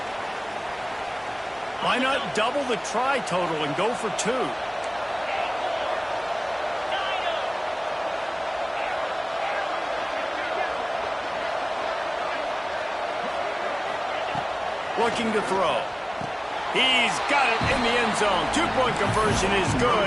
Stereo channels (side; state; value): both; identical; correlation 1.00